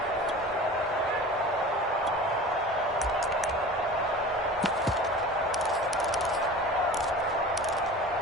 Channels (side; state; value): both; normal; correlation 0.37